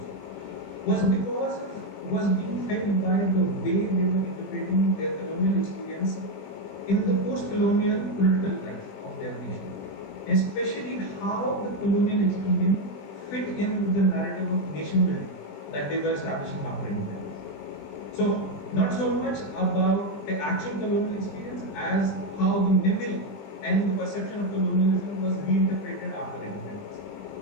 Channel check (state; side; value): late; right; 20 ms